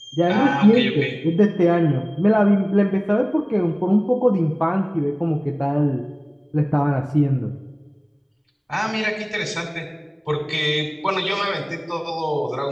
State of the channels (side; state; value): both; identical; correlation 1.00